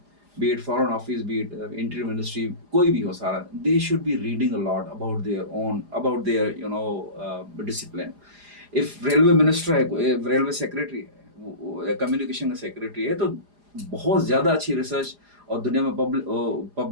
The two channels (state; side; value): late; left; 4.9 ms